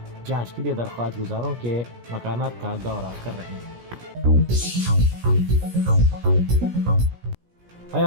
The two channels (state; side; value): late; left; 17 ms